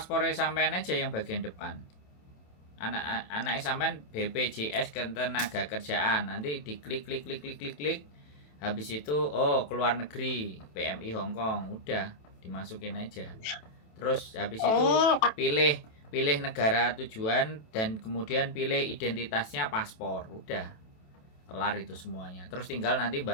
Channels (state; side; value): late; right; 27 ms